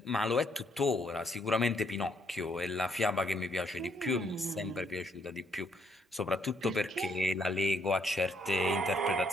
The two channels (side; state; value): both; normal; correlation 0.70